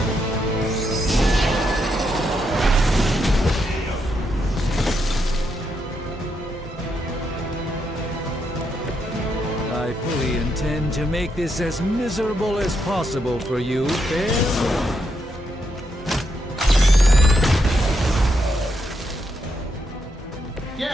I fully intend to make this as miserable as possible for you, fair?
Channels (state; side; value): normal; both; correlation 0.80